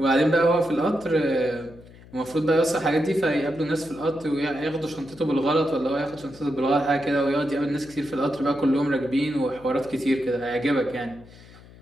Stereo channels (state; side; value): noise; left; hum, 22 dB below the sound